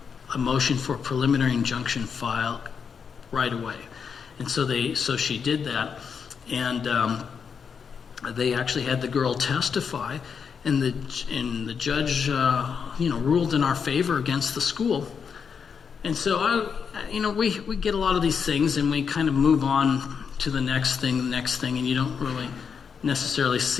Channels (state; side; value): quieter; right; 6.4 dB